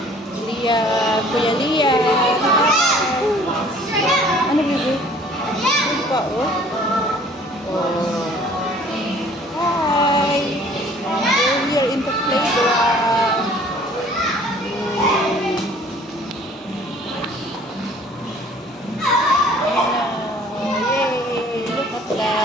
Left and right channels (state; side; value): normal; both; correlation 0.53